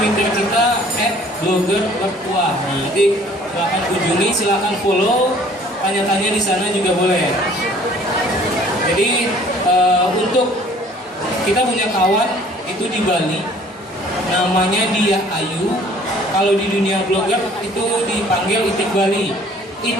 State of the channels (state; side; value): normal; both; correlation 0.54